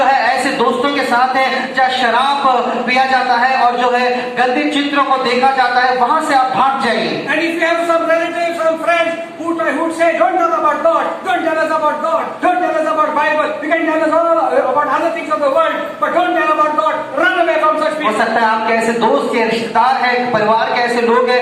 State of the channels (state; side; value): identical; both; correlation 1.00